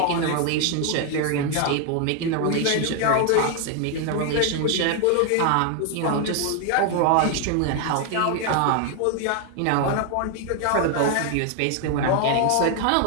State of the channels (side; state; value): both; different; correlation 0.00